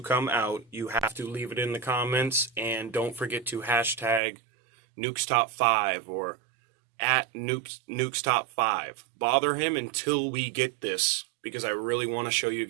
come out, you have to leave it in the comments, and don't forget to hashtag Nuke's Top 5 or at Nuke's Top 5. Bother him until we get this, because I really want to show you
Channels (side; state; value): left; drops out; at 4.2 s